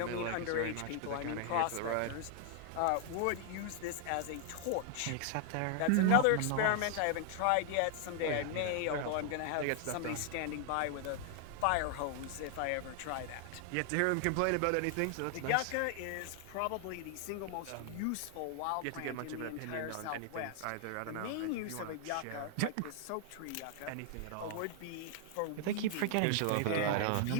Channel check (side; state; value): both; different; correlation 0.00